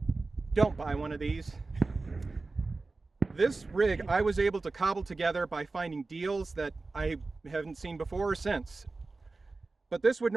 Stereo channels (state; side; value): quieter; left; 3.6 dB